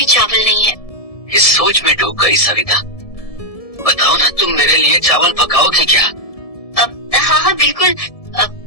चावल नहीं है। इस सोच में डूब गई सविता। बताओ ना, तुम मेरे लिए चावल पकाओगी क्या? अब हाँ बिल्कुल।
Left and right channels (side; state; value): right; late; 1.7 ms